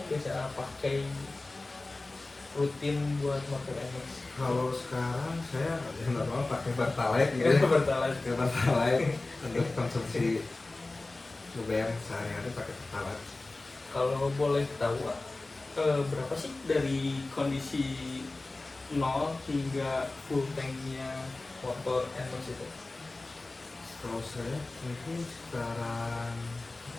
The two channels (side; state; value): right; quieter; 3.1 dB